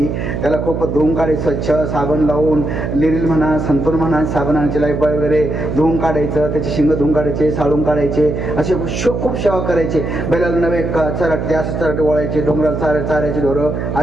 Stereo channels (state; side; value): noise; right; hum, 3 dB below the sound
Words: त्याला खूप धुवून काढायचं स्वच्छ, साबण लावून. लिरिल म्हणा, संतूर म्हणा, साबणाचे लाईफबॉय वगैरे धुवून काढायचं. त्याचे शिंग धुवून काढायचे, साळून काढायचे. असे खूप सेवा करायचे. बैलाला नवे चराटे, असं चराटे वळायचे. डोंगराला चारायचे ढोरं